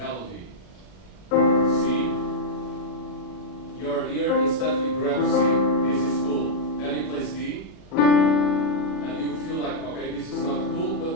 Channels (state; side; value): late; right; 40 ms